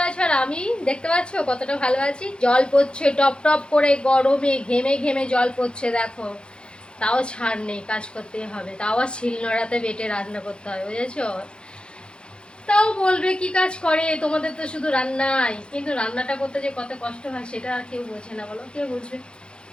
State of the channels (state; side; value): late; right; 0.053 ms